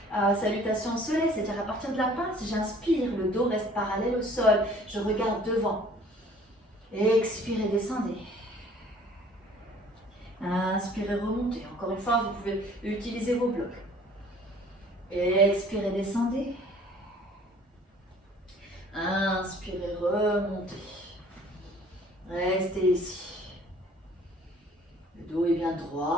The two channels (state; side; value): normal; both; correlation 0.53